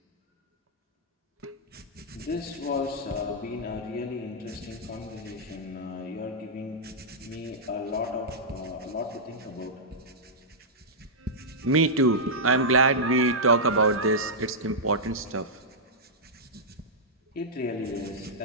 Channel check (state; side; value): normal; both; correlation -0.10